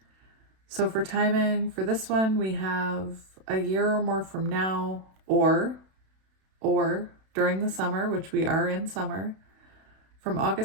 So for timing, for this one, we have a year or more from now, or during the summer, which we are in summer, from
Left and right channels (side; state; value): left; late; 32 ms